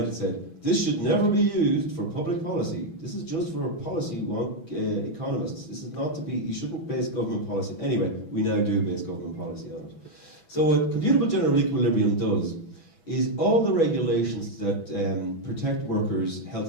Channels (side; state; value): right; late; 6.1 ms